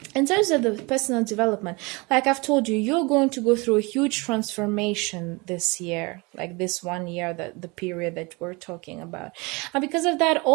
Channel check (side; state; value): left; quieter; 26.8 dB